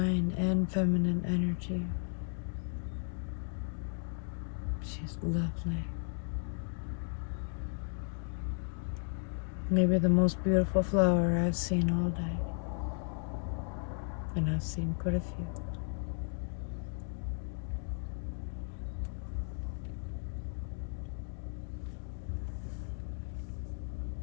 and feminine energy. She's lovely. Maybe the most beautiful flower I've seen all day. And I've seen quite a few.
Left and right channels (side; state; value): right; silent; 54 dB below the other